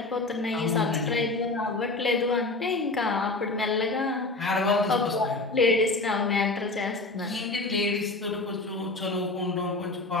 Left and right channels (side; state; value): right; quieter; 3.2 dB